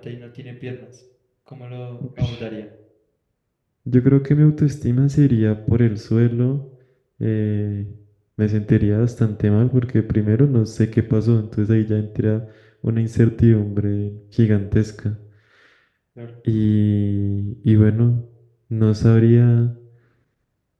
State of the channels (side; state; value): both; identical; correlation 1.00